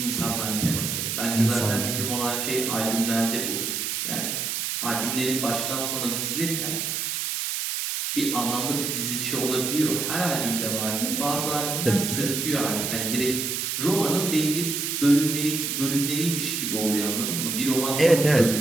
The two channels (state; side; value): noise; right; hiss, 1 dB below the sound